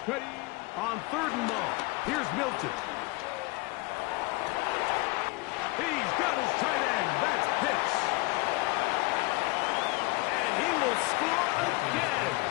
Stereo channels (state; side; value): quieter; right; 24.1 dB